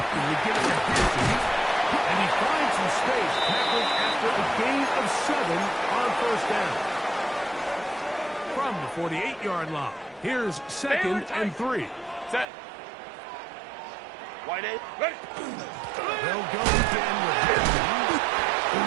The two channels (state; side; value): drops out; left; at 12.5 s